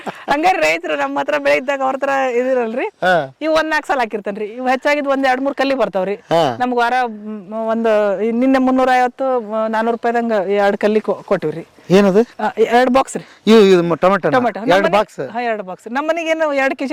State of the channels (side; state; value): both; identical; correlation 1.00